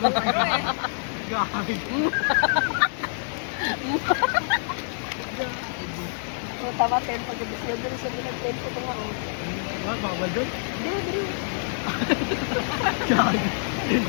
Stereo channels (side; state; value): right; silent; digital silence